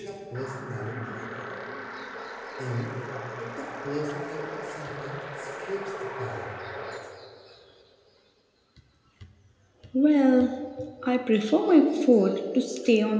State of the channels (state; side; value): identical; both; correlation 1.00